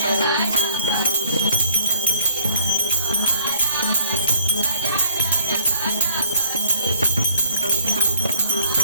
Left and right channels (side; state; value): both; inverted; correlation -0.61